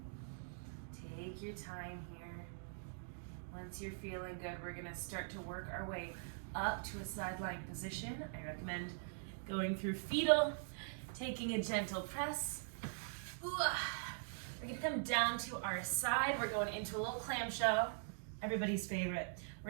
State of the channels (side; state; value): left; silent; digital silence